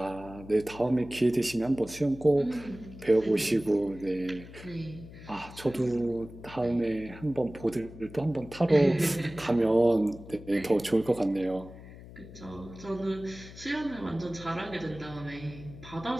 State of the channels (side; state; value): left; noise; hum, 16 dB below the sound